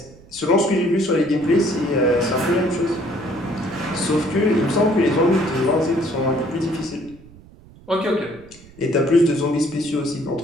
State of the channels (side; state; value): right; noise; rumble, 23 dB below the sound